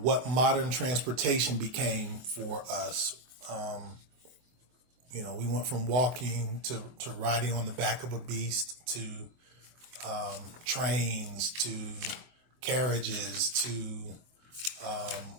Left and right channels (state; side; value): late; left; 24 ms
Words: modern transportation became for us. We went from walking to riding on the back of a beast to trains to carriages to